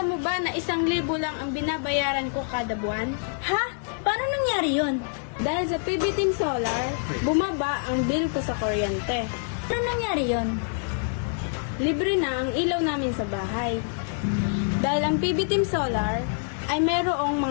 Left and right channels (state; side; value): silent; right; 61 dB below the other